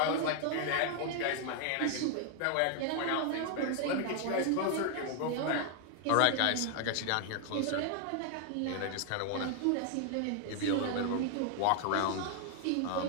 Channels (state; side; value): different; both; correlation 0.00